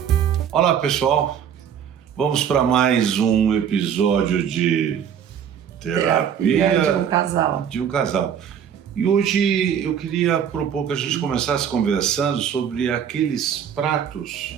Olá, pessoal. Vamos para mais um episódio de Terapia de um casal. de um casal. E hoje eu queria propor que a gente começasse conversando sobre aqueles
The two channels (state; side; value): quieter; left; 8.4 dB